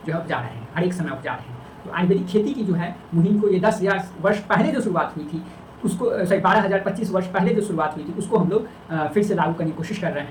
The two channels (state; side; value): identical; both; correlation 1.00